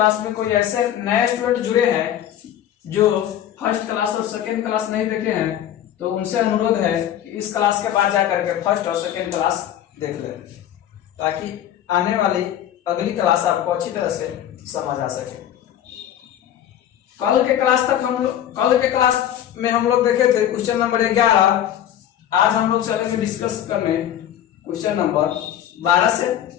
में कोई ऐसे नए स्टूडेंट जुड़े हैं जो फर्स्ट क्लास और सेकेंड क्लास नहीं देखे हैं, तो उनसे अनुरोध है कि इस क्लास के बाद जाकर के फर्स्ट और सेकेंड क्लास देख लें, ताकि आने वाली अगली क्लास आपको अच्छी तरह से समझ आ सके। कल के क्लास में हम लोग देखे थे क्वेश्चन नंबर 11। आज हम लोग चलेंगे डिस्कस करने क्वेश्चन नंबर 12 से।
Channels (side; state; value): right; quieter; 10.9 dB